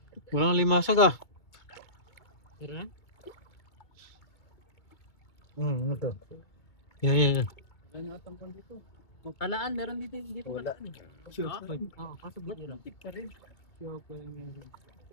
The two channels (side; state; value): right; late; 2.3 ms